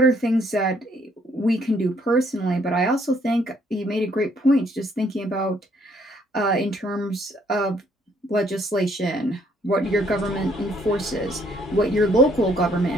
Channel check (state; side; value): normal; both; correlation 0.66